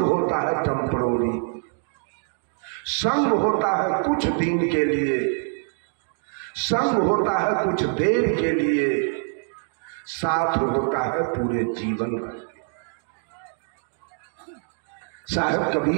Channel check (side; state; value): left; silent; 57 dB below the other